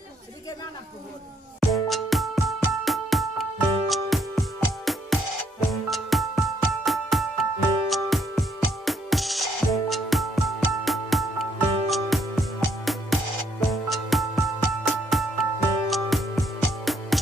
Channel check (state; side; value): normal; both; correlation 0.71